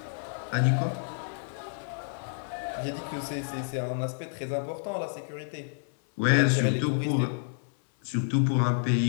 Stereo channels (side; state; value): right; silent; 58 dB below the other